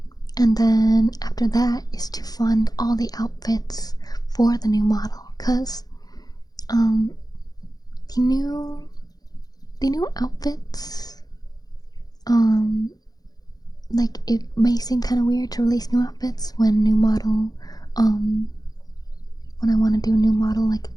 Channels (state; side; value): late; right; 0.19 ms